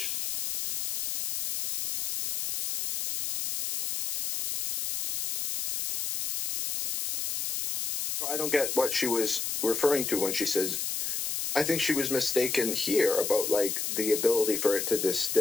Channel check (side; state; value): left; noise; hiss, 3 dB below the sound